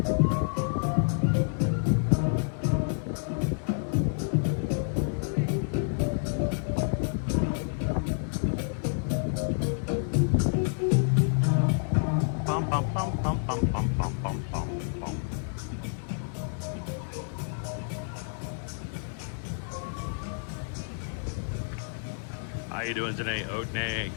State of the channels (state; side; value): silent; right; digital silence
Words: How you doing today, Oat and Egg?